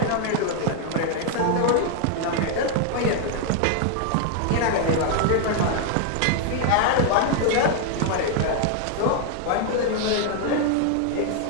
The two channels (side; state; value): both; different; correlation 0.00